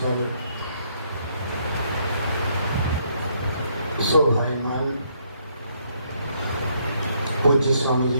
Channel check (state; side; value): inverted; both; correlation -0.71